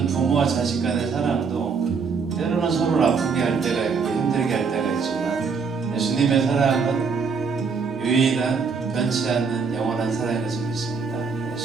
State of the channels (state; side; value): quieter; left; 5.4 dB